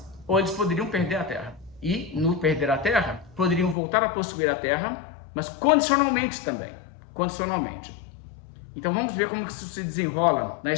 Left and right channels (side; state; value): right; drops out; at 3.8 s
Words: Ou eles poderiam perder a terra. E, no perder a terra, poderiam voltar a possuir a terra, mas condicionalmente também. Condicionalmente. Então vamos ver como isso se desenrola na